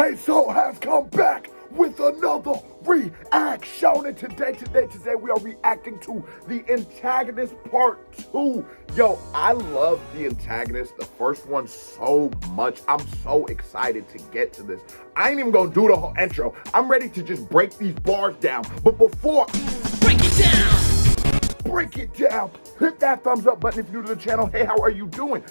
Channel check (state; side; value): inverted; both; correlation -1.00